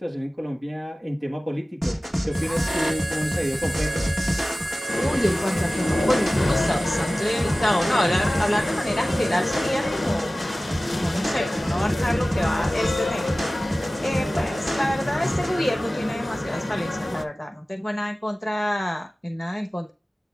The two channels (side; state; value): both; normal; correlation 0.97